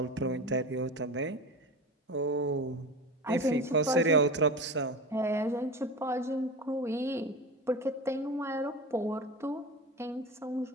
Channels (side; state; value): both; normal; correlation 0.28